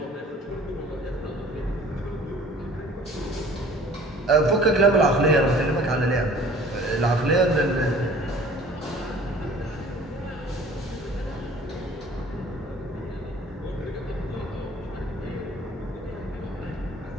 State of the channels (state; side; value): normal; both; correlation 0.50